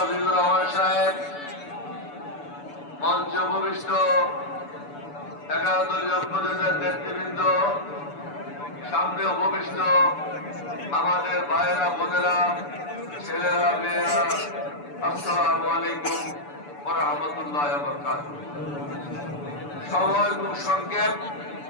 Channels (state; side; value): late; right; 6.9 ms